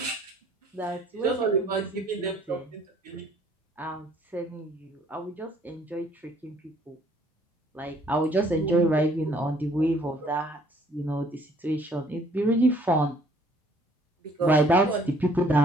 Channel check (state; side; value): normal; both; correlation 0.60